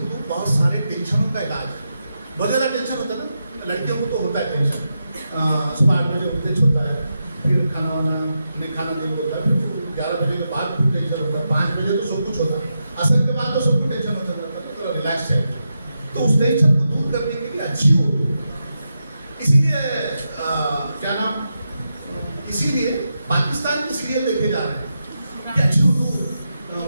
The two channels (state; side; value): inverted; both; correlation -0.87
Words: بہت سارے ٹینشنوں کا علاج ہے. بہت زیادہ ٹینشن ہوتا ہے نا، لڑکیوں کو تو ہوتا ہے ٹینشن. صبح 8 بجے اٹھتے چھوٹا ہے، پھر کھانا وانا نہیں کھانا نہیں ہوتا ہے، پھر 11 بجے کے بعد پھر ٹینشن ہوتا ہے، 5 بجے تو سب کچھ ہوتا ہے، عصر کے بعد تو سب کو ٹینشن ہوتا ہے، تھوڑا ریلیکس ہے. تو اس ٹینشن کو دور کرنے کے لیے اچھی اردو. اسی لیے کیا نام، اسی لیے پاکستان کے سیریل دیکھے جا رہے ہیں کہ اچھی اردو